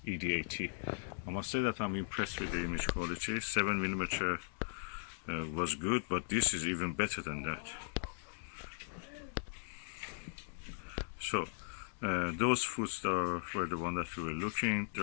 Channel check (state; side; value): silent; right; digital silence